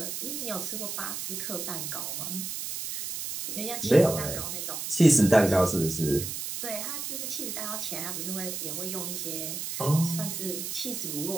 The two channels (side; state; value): right; noise; hiss, 5 dB below the sound